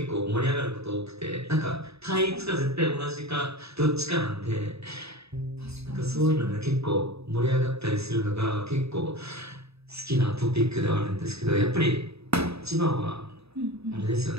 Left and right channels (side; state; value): left; late; 0.78 ms